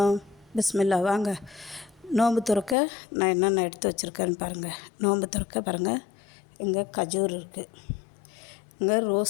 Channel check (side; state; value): right; drops out; at 2.8 s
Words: பிஸ்மில்லா. வாங்க நோன்பு துறக்க நான் என்னென்ன எடுத்து வச்சுருக்கேன்னு பாருங்கள். நோன்பு துறக்க பாருங்கள், இங்கே கஜூர் இருக்குது, இங்கே